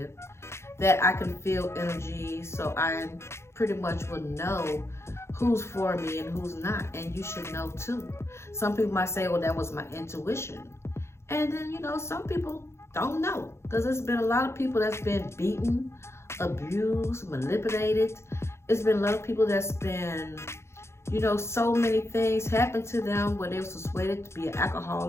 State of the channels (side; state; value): right; late; 0.13 ms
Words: that I can feel energy, so I pretty much will know who's for me and who's not. And you should know too. Some people might say, well, that was my intuition. And then, some people don't know, because there's been a lot of people that's been beaten, abused, manipulated. It's been a lot of people that's been, so many things happened to them where they were persuaded to be an